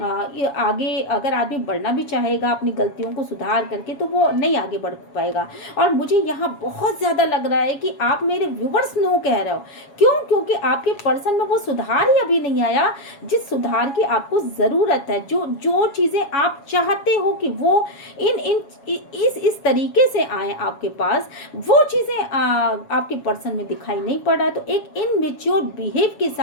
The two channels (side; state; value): right; late; 7.2 ms